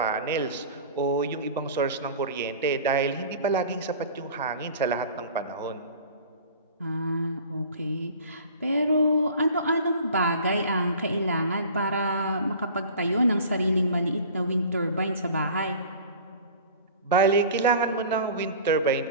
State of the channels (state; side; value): inverted; both; correlation -0.42